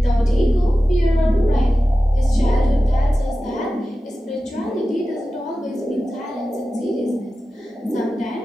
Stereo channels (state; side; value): normal; both; correlation 0.94